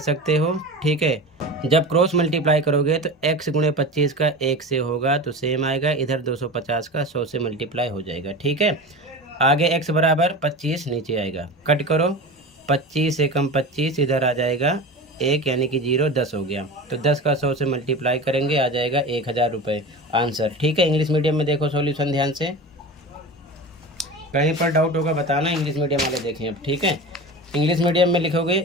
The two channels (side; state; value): both; normal; correlation 0.30